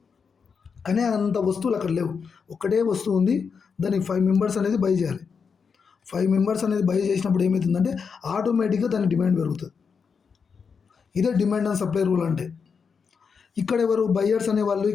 కానీ అంత వస్తువులు అక్కడ లేవు, ఒకటే వస్తువు ఉంది. దానికి 5 మెంబర్స్ అనేది బై చేయాలి. 5 మెంబర్స్ అనేది బై చేసినప్పుడు ఏమవుతుందంటే ఆటోమేటిక్గా దాని డిమాండ్ పెరుగుతుంది. ఇదే డిమాండ్ అండ్ సప్లై రూల్ అంటే. ఇక్కడ ఎవరు బయ్యర్స్ అనేవాళ్ళు,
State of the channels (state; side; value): quieter; right; 5.9 dB